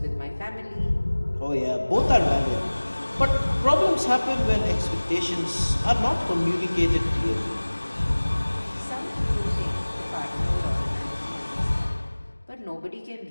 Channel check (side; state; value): both; inverted; correlation -1.00